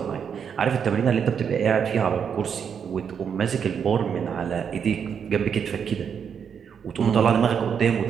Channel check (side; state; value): left; quieter; 7.3 dB